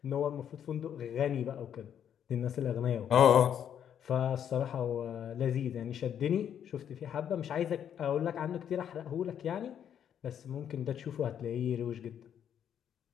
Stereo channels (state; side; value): quieter; right; 9.1 dB